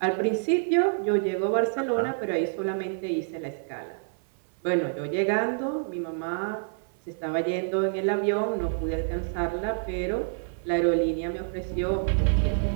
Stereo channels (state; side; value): silent; left; 56 dB below the other